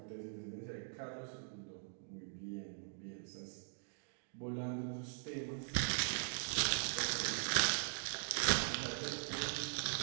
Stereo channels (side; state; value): left; silent; digital silence